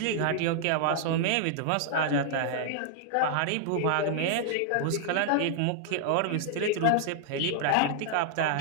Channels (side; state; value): both; different; correlation -0.01